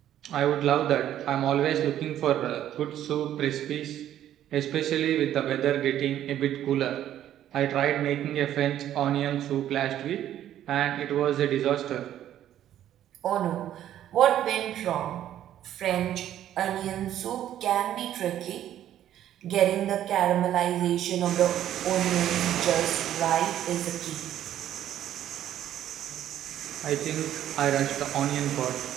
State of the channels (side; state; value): left; quieter; 11.6 dB